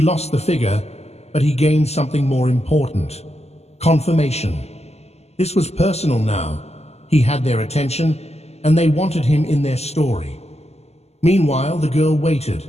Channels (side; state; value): right; late; 0.30 ms